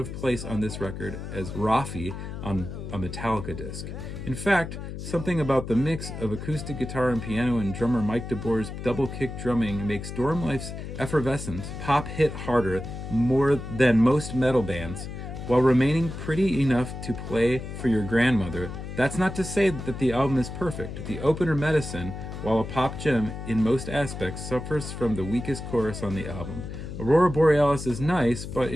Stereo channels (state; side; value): noise; left; hum, 8 dB below the sound